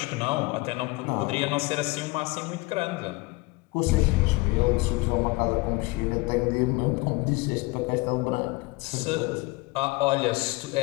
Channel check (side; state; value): right; quieter; 23.2 dB